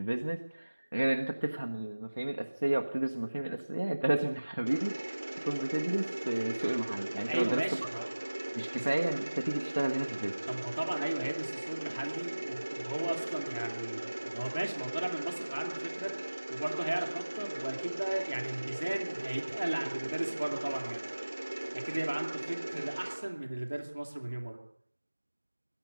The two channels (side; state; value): both; inverted; correlation -1.00